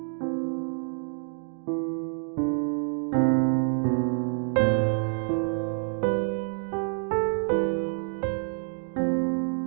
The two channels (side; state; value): left; silent; 60 dB below the other